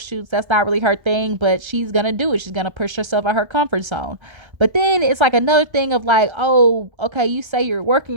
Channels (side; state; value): left; late; 1.3 ms